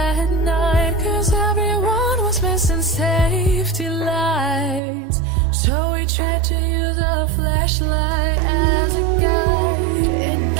night, 'cause everyone was missing safety lights. So we tried to use a flashlight as a guide. And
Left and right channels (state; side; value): drops out; left; at 4.8 s